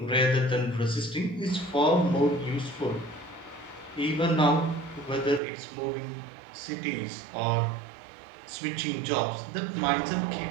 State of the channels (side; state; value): left; drops out; at 5.4 s